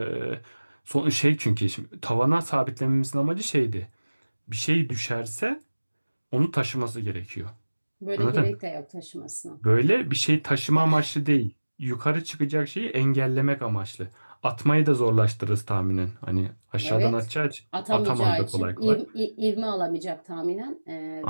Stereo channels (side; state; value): both; inverted; correlation -1.00